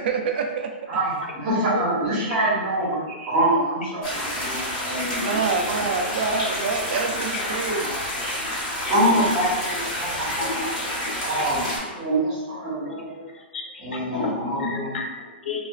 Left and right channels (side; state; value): both; normal; correlation -0.17